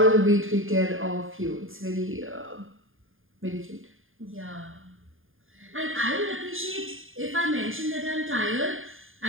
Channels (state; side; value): late; left; 0.59 ms